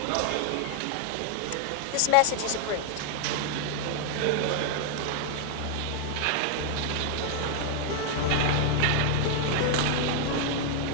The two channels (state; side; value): different; both; correlation 0.00